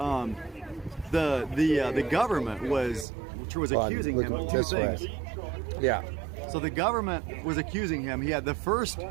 the government was accusing him of two this way. things. Yeah. So the government was accusing him. He had the first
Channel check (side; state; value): left; drops out; at 3.1 s